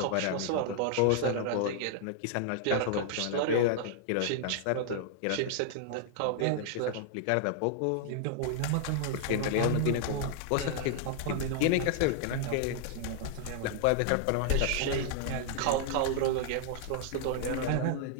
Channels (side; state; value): both; different; correlation 0.00